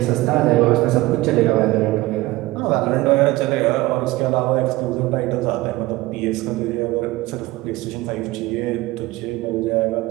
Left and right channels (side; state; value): left; quieter; 18.9 dB